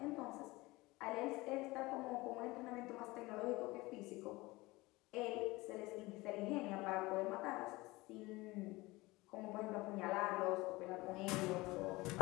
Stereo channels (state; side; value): quieter; right; 21.3 dB